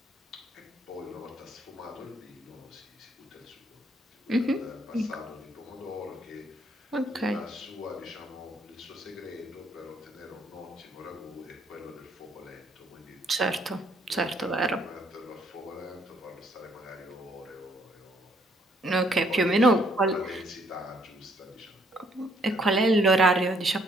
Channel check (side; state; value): both; normal; correlation 0.67